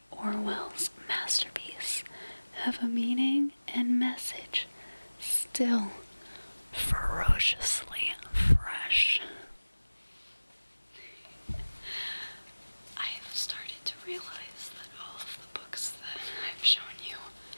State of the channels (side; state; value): both; inverted; correlation -1.00